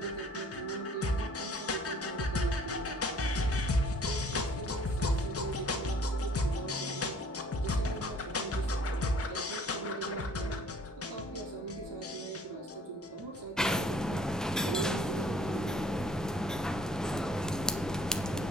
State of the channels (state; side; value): normal; both; correlation 0.55